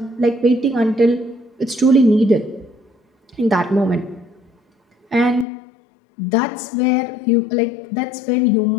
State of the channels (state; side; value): drops out; right; at 5.5 s